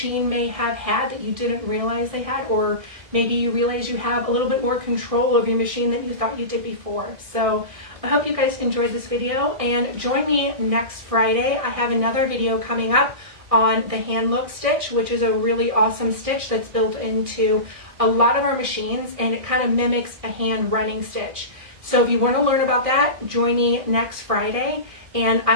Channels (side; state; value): left; late; 1.6 ms